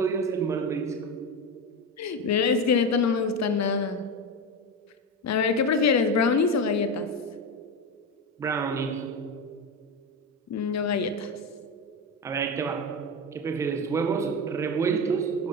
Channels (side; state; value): both; normal; correlation 0.17